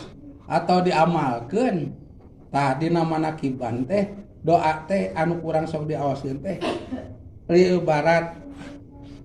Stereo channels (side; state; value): both; identical; correlation 1.00